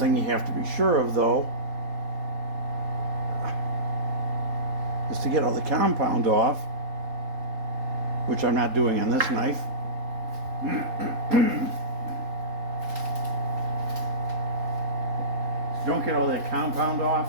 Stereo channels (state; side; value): late; left; 3.8 ms